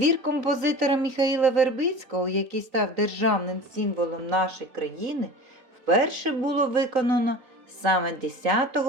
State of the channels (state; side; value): late; left; 3.9 ms